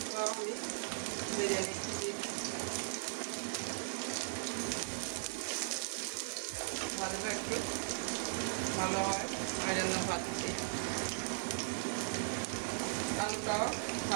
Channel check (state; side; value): silent; left; digital silence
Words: তো আমি ভেজে নিচ্ছি। ভাজলে একটু ভালো হয়, ওই জন্য ভাজছি। আলুটাও